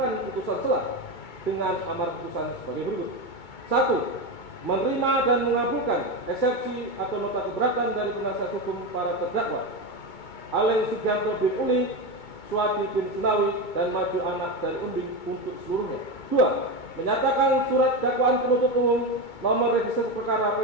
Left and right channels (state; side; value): late; right; 2.2 ms